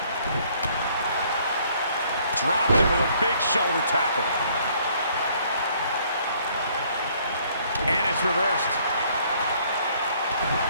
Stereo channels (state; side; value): inverted; both; correlation -0.63